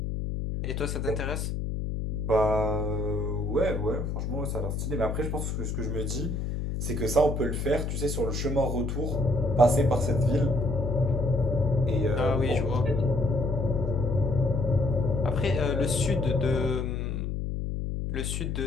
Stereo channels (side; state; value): left; noise; hum, 2 dB below the sound